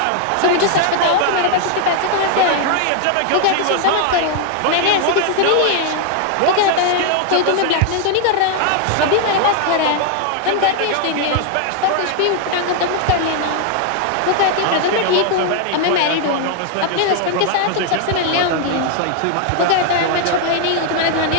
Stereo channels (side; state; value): both; different; correlation 0.00